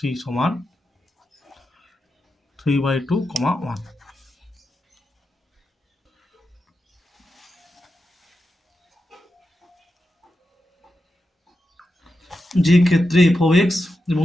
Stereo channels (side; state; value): both; normal; correlation 0.89